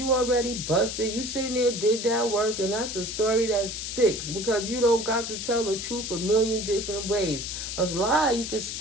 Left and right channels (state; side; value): noise; left; hiss, 5 dB below the sound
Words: already busted. You sitting there, did that work, and that's the story that sticks because you don't got to tell the truth a million different ways. A lie, you can